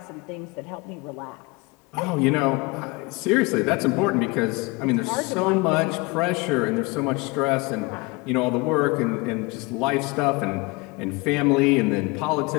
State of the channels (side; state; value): right; quieter; 26.0 dB